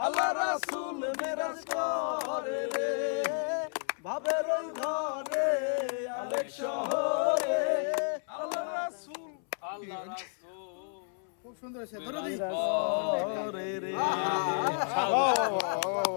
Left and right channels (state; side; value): silent; right; 57 dB below the other